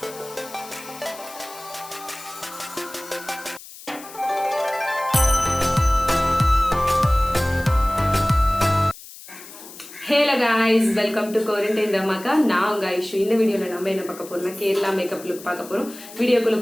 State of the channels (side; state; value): left; noise; hiss, 17 dB below the sound